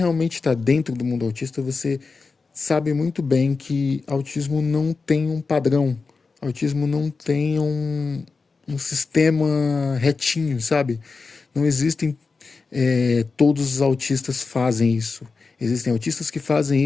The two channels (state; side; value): quieter; right; 4.4 dB